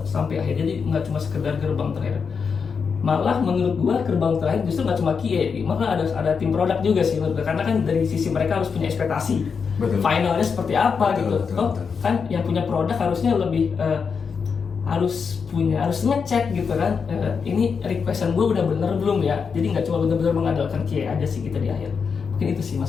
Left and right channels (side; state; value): right; quieter; 5.8 dB